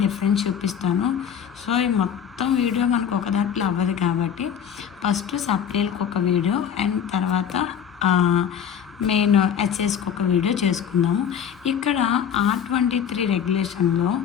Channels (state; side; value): quieter; right; 8.2 dB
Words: డిఫరెన్స్ చూపిస్తాను. సో ఈ మొత్తం వీడియో మనకు ఒక దాంట్లో అవ్వదు కాబట్టి ఫస్ట్ సప్లీలకు ఒక వీడియో, అండ్ తర్వాత మెయిన్ ఎస్ఎస్కి ఒక వీడియో చేసుకుందాము. ఇక్కడ R23 రెగ్యులేషన్లో